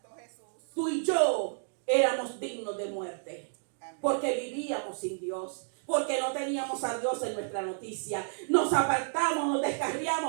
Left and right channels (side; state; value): left; silent; digital silence